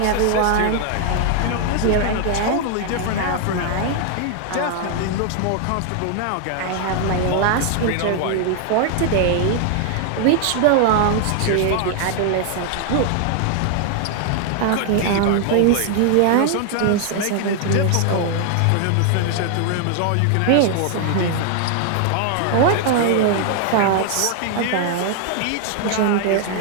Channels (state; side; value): different; both; correlation 0.00